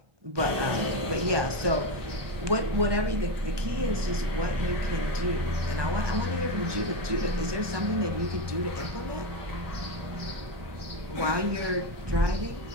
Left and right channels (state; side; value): late; left; 1.2 ms